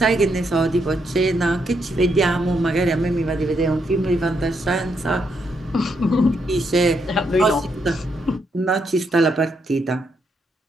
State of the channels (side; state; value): both; normal; correlation 0.78